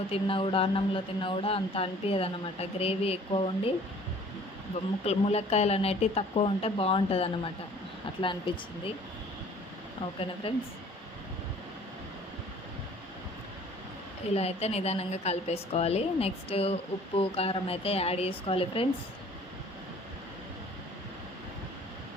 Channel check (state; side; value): normal; both; correlation 0.52